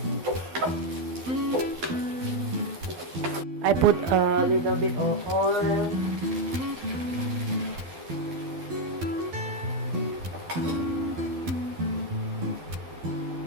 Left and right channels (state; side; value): late; left; 12 ms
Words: I put a little bit of oil.